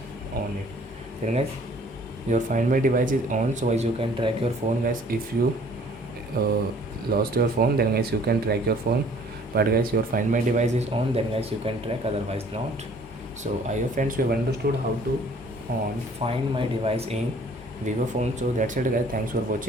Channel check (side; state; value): both; normal; correlation 0.56